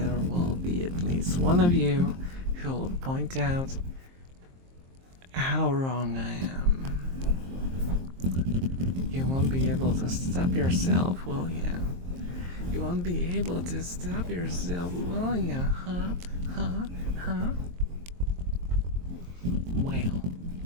will be at least one of you who will point out how wrong I am. You won't be able to stop yourself, will you? You won't be able to stop yourself, will you? Huh? Well,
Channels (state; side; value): late; left; 23 ms